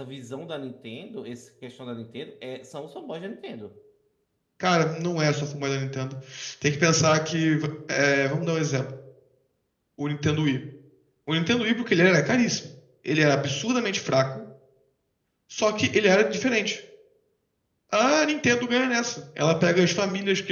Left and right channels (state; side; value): identical; both; correlation 1.00